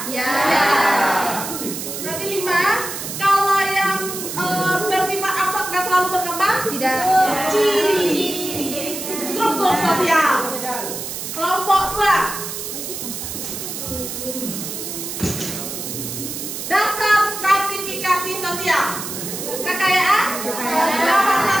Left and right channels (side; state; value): right; noise; hiss, 6 dB below the sound